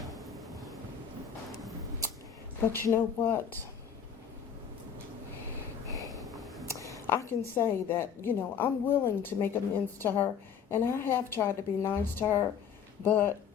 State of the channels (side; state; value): right; quieter; 7.6 dB